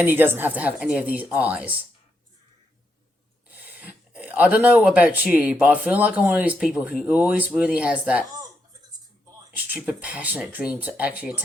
he doesn't have to have any of these eyes. I don't know about you, but I feel like I'm one of these people who always really has that stupid, passionate dream to actually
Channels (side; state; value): both; normal; correlation 0.81